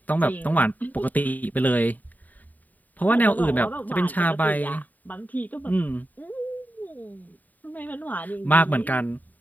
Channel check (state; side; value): late; right; 0.081 ms